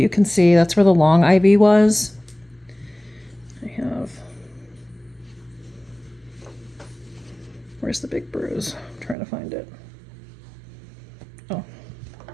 can see that's where the long IV was. Where's the big bruise? I'm trying to find it. Oh.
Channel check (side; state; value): left; drops out; at 9.2 s